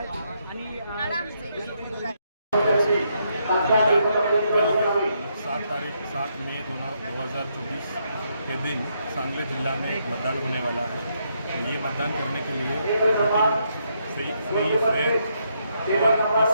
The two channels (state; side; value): inverted; both; correlation -0.77